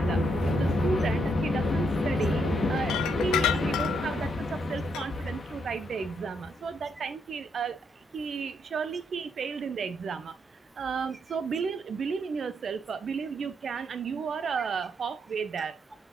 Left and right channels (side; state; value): both; normal; correlation 0.76